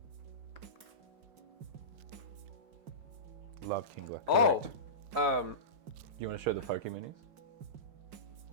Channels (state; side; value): late; left; 5.5 ms